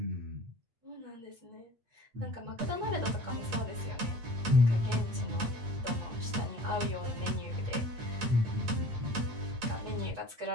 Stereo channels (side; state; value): left; late; 8.8 ms